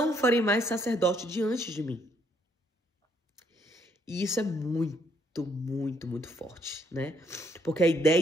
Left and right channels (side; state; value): both; normal; correlation 0.70